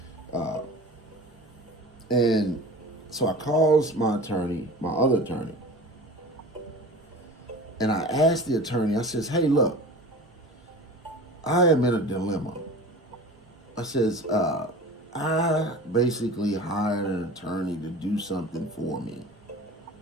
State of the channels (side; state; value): both; normal; correlation 0.37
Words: And so I calls my other attorney, and I asked the attorney. I says, "Hey, look, I am in a dilemma." I says, I basically hired an attorney to do something for me,